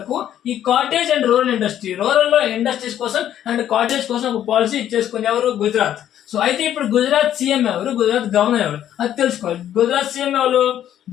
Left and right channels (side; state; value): right; quieter; 11.0 dB